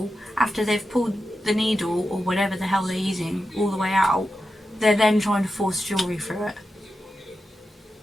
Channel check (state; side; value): normal; both; correlation 0.90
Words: after they've pulled the needle or whatever the hell they're using all the way out. They're then trying to force jewellery through it.